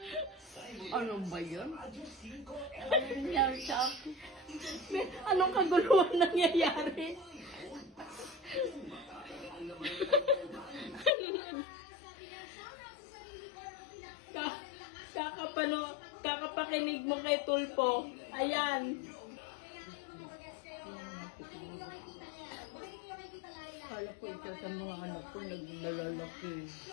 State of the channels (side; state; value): right; drops out; at 11.1 s